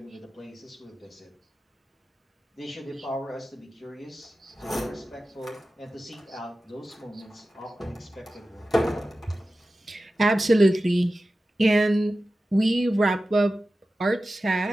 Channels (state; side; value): normal; both; correlation 0.94